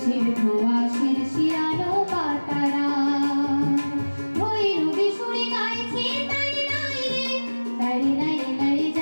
ধোয়া শিরশিরানো পাতারা ভৈরবী সুরে গাইছে তারি নাই রে, তারি নাই নাই।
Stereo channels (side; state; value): both; inverted; correlation -1.00